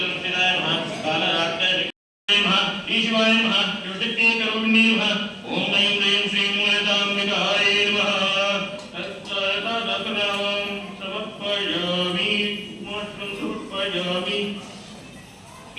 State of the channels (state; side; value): identical; both; correlation 1.00